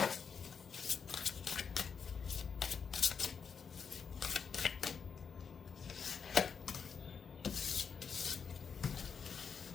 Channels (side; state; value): right; quieter; 6.3 dB